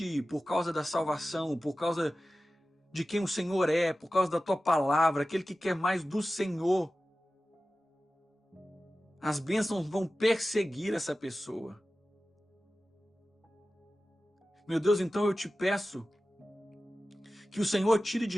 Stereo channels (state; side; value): normal; both; correlation 0.95